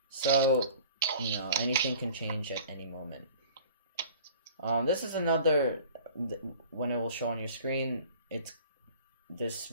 So, anything can change at any moment. This is another, when it will show on your screen, this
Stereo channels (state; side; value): inverted; both; correlation -0.46